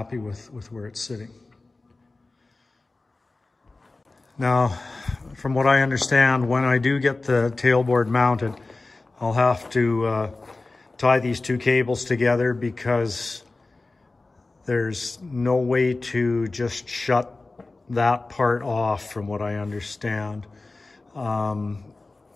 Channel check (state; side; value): quieter; right; 3.3 dB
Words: with where it's sitting. Now, from what I understand, when I do get the tailboard mounted, I'll have to tie these two cables together, because there's no way to just shut that part off, from what I understand.